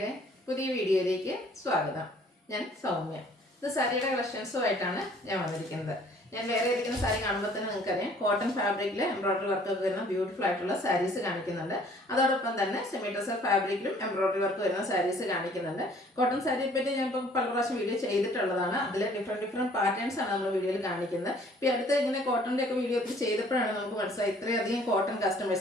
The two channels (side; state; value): both; normal; correlation 0.56